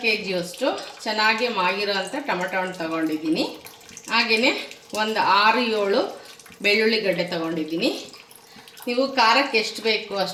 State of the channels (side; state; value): both; identical; correlation 1.00